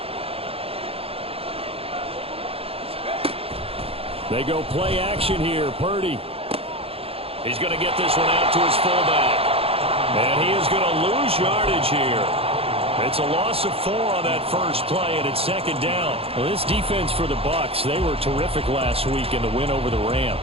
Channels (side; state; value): left; late; 0.28 ms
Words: They go play action here. Purdy. He's going to get this one out to his fullback. And he is going to lose yardage here. It's a loss of 4 on that first play, and it's second down. Well, this defense for the Bucs, they were terrific last week in the win over the